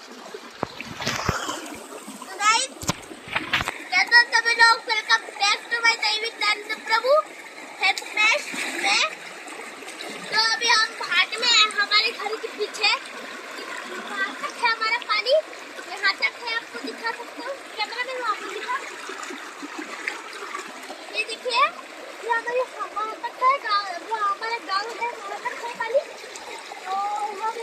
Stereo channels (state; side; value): identical; both; correlation 1.00